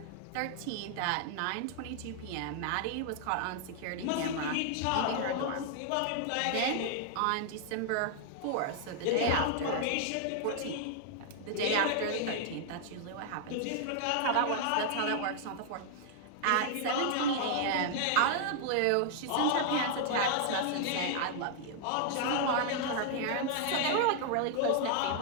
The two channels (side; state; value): both; different; correlation -0.01